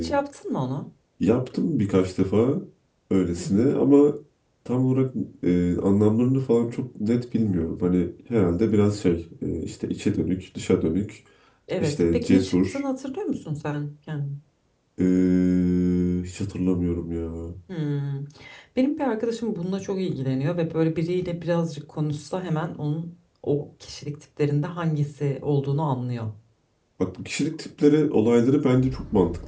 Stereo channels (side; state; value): both; identical; correlation 1.00